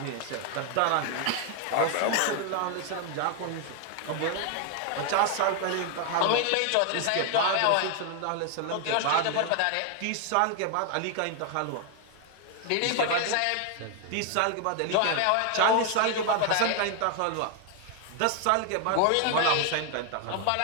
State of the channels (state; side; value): different; both; correlation 0.00